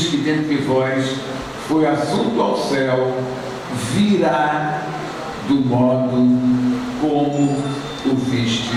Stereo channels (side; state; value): both; identical; correlation 1.00